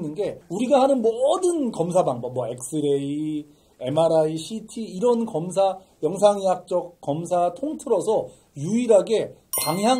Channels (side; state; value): both; identical; correlation 1.00